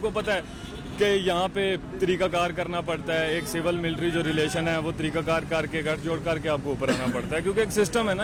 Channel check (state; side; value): identical; both; correlation 1.00